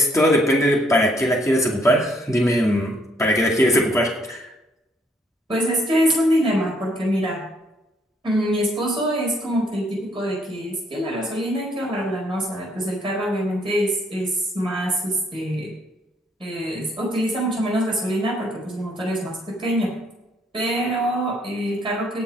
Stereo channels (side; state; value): both; normal; correlation 0.68